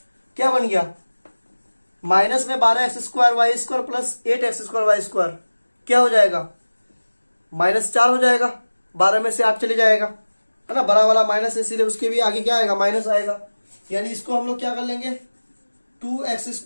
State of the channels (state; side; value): inverted; both; correlation -1.00